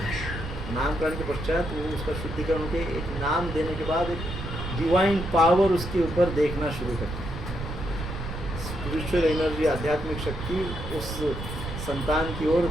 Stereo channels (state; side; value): noise; right; rumble, 7 dB below the sound